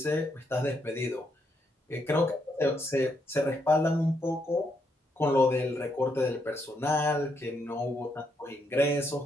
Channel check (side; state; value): both; normal; correlation 0.77